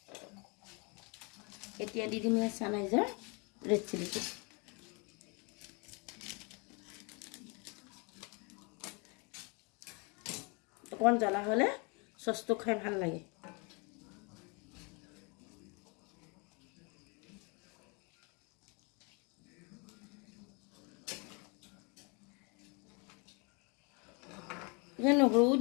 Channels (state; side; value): quieter; right; 31.8 dB